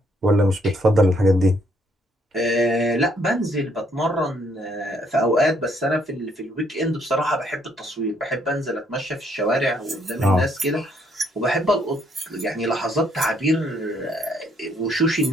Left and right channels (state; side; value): normal; both; correlation 0.69